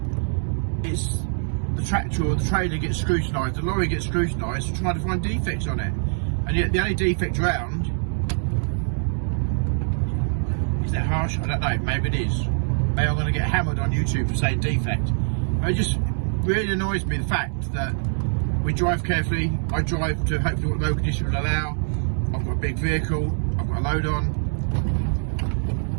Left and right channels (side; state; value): left; silent; digital silence